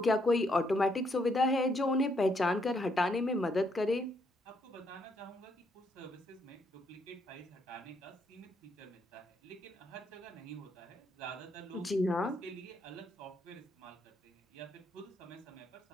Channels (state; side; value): normal; both; correlation 0.74